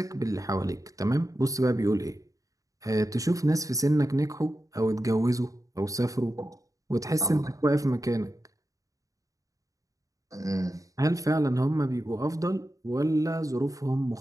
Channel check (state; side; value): late; left; 0.16 ms